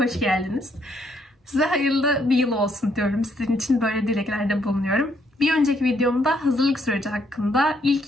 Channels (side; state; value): both; normal; correlation 0.71